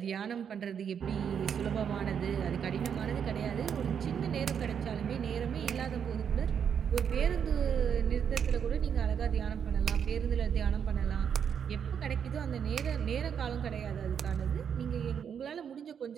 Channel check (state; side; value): quieter; left; 7.7 dB